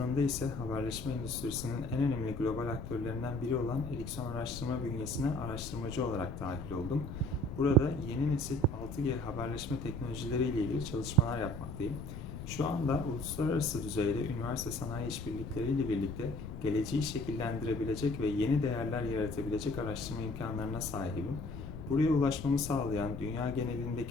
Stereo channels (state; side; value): noise; left; rumble, 9 dB below the sound